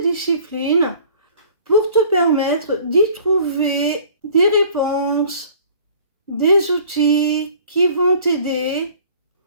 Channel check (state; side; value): inverted; both; correlation -0.51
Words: pour te permettre d'y trouver des réponses, des outils qui vont t'aider